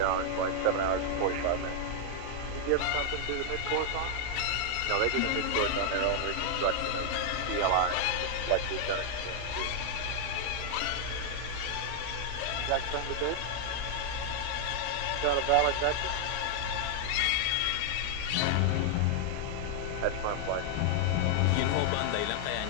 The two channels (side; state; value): both; different; correlation 0.00